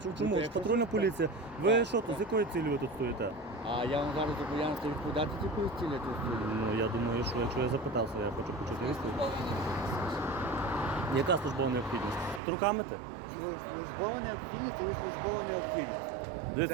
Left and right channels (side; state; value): left; drops out; at 12.4 s